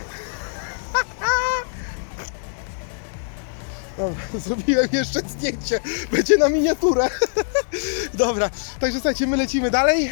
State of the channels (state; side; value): silent; right; digital silence